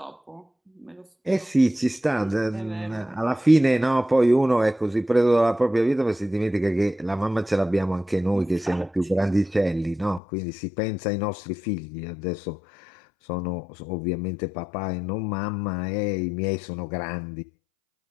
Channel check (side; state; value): right; drops out; at 10.2 s